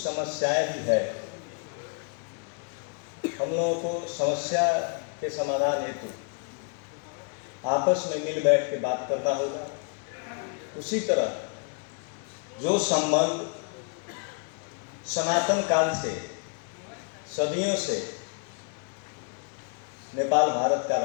भी है। हम लोगों को समस्या के समाधान हेतु आपस में मिल बैठ के बात करना होगा। उसी तरह जो संबंध सनातन काल से, सदियों से नेपाल भारत का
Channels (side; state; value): right; quieter; 39.4 dB